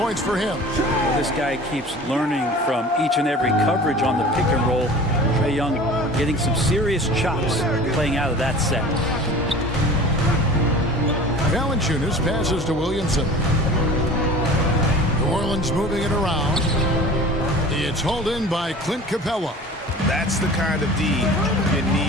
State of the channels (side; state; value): both; normal; correlation 0.41